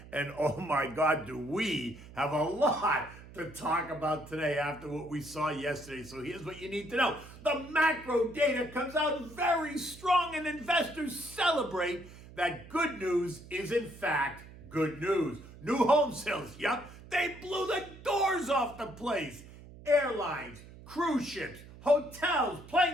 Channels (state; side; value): noise; right; hum, 18 dB below the sound